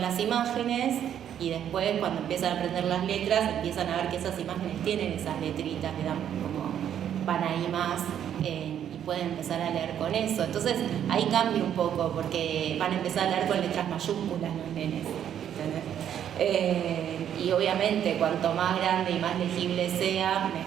las imágenes y después, cuando empiezan a aprender las letras, empiezan a ver que esas imágenes tienen esas letritas, que dan como van ahí más y pueden empezar a leer con eso. Entonces ahí cambia un poco porque van a empezar a leer con letras mayúsculas los nenes, ¿entendés? Y obviamente cuanto más grande y más legible sea,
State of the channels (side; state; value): left; quieter; 9.7 dB